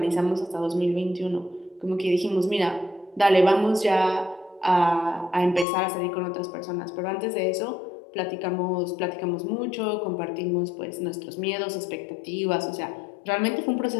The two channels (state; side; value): drops out; right; at 5.7 s